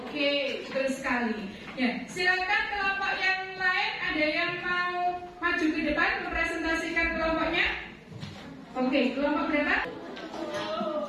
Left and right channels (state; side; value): identical; both; correlation 1.00